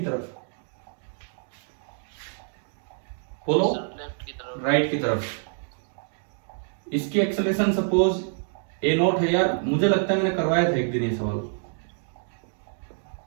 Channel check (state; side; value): silent; left; digital silence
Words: तरफ? बोलो। राइट की तरफ। इसकी एक्सेलरेशन सपोज a0 है। यार मुझे लगता है मैंने करवाया था एक दिन ये सवाल।